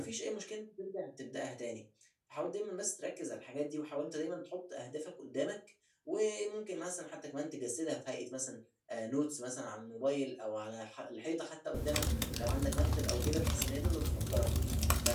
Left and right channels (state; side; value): identical; both; correlation 1.00